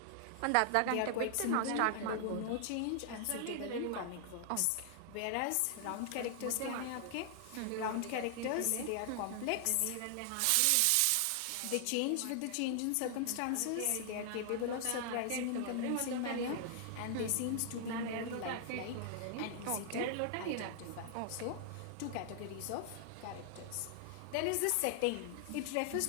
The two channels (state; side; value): different; both; correlation 0.00